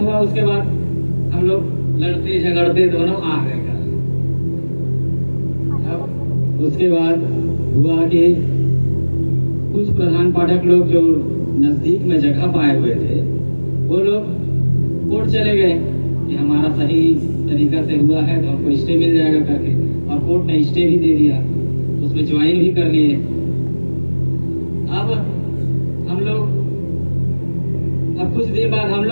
उसके बाद हम लोग लड़ते झगड़ते दोनों आ गए घर। अब उसके बाद हुआ कि कुछ प्रधान पाठक लोग जो नजदीक में जगह पाए हुए थे वो लोग कोर्ट चले गए कि हमारा सही तरीका से हुआ है तो हमको स्टे मिल जाएगा करके, और कोर्ट ने स्टे भी दे दिया, उसमें ज्वाइन भी कर लिए। अब हम लोग कुछ देर बाद हम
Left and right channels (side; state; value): both; inverted; correlation -1.00